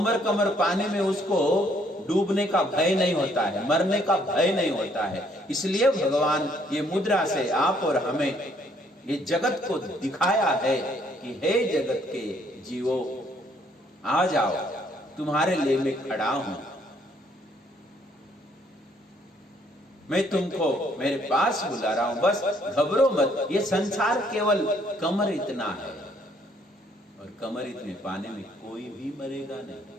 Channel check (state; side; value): normal; both; correlation 0.66